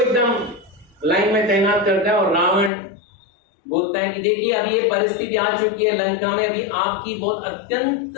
लाइन में तैनात करता है और रावण बोलता है कि देखिए अब ये परिस्थिति आ चुकी है लंका में, अभी आपकी बहुत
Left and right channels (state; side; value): drops out; right; at 2.7 s